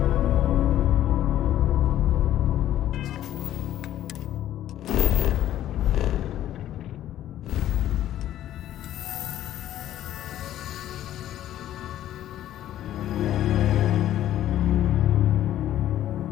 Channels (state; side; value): quieter; right; 12.5 dB